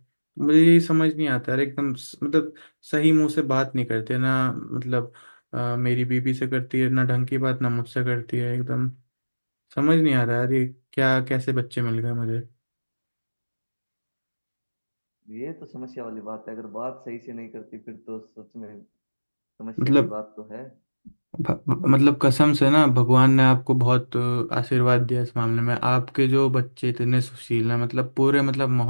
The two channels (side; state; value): both; inverted; correlation -1.00